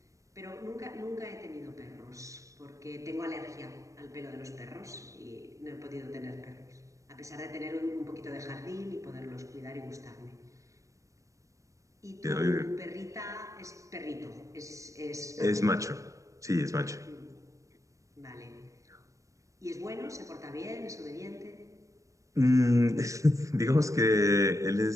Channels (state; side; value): late; left; 0.16 ms